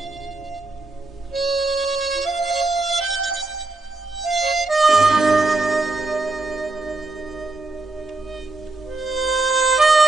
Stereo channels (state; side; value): quieter; left; 3.1 dB